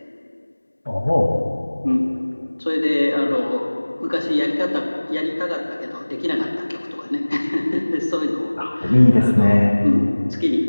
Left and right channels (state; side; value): inverted; both; correlation -1.00